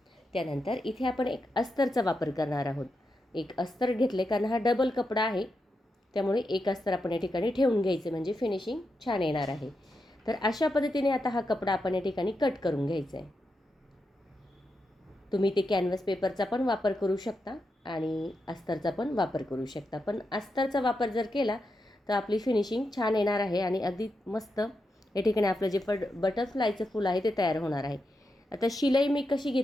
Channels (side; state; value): both; normal; correlation 0.86